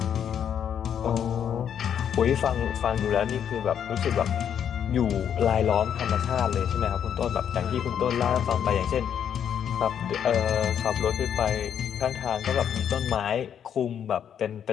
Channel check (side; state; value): right; quieter; 8.8 dB